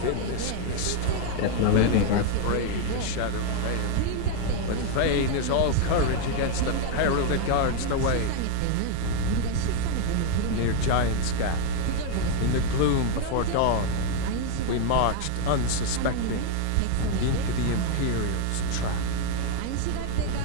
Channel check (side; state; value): both; different; correlation 0.00